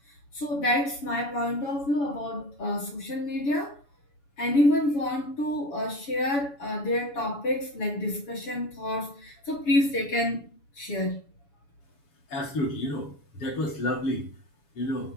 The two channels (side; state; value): right; late; 7.0 ms